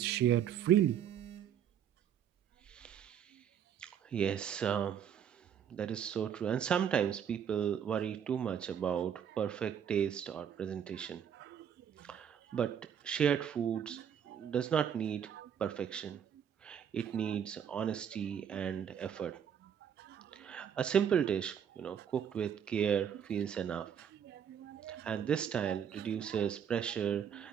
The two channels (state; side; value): quieter; left; 8.6 dB